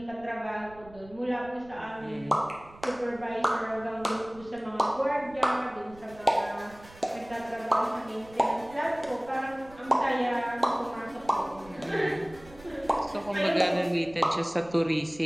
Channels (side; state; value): right; noise; rumble, 22 dB below the sound